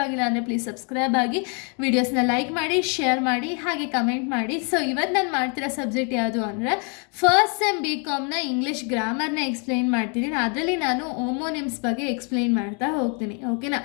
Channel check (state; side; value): quieter; right; 37.1 dB